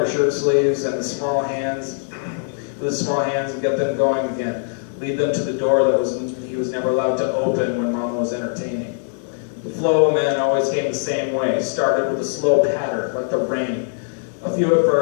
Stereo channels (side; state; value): right; silent; digital silence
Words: shirt sleeves and with his small hands and get them going again. Lead them to the door that he was never allowed to open when Mama was entertaining. The flow of men always came the same way, started with a slow patter, like the rain. A few at